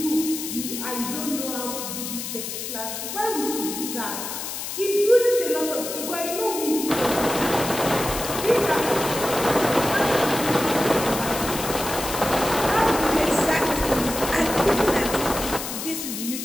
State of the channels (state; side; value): noise; left; hiss, 6 dB below the sound